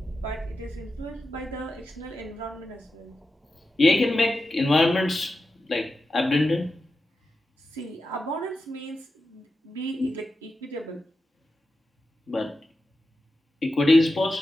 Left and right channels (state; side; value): normal; both; correlation 0.90